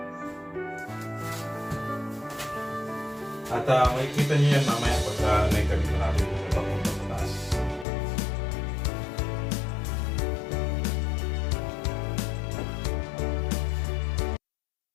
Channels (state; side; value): drops out; right; at 7.9 s